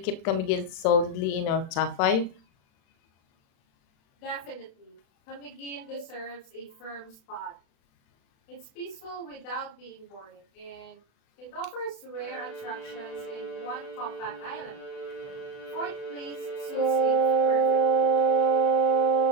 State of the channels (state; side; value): late; right; 36 ms